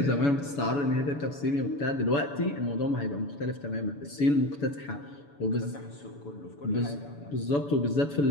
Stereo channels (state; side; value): late; right; 7.0 ms